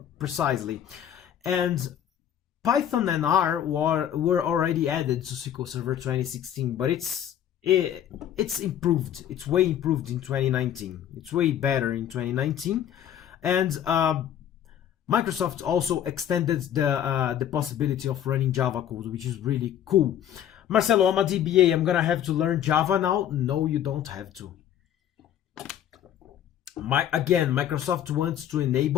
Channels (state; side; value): quieter; right; 10.3 dB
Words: precisely. And Python and R were already added to SQL Server 2016, but it's improved. It's way improved in 2019. It's way better in 2019, and Microsoft also extended the possibility of running Java code, which is really cool. Marcelo, I'm a DBA. I'm gonna have to learn Java now? No, you don't have to. Microsoft wants to